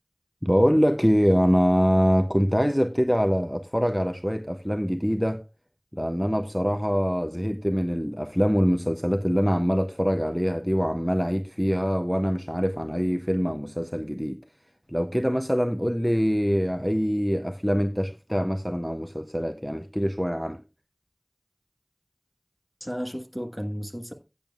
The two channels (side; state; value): both; identical; correlation 1.00